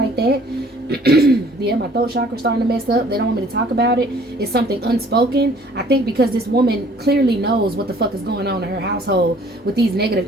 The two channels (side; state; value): both; normal; correlation 0.56